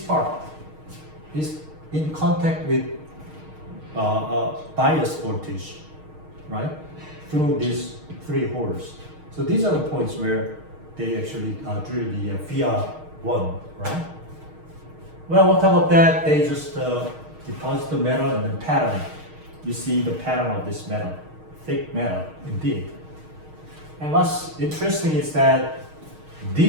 is in contact with bias voltage, right? Through these 3 holes. So these are the points where they actually drill the VR1, right? Well, on top of that, they just deposit the metal and then pattern it. You see the pattern of this metal, thick metal, indeed. And what's interesting is that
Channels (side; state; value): left; late; 6.4 ms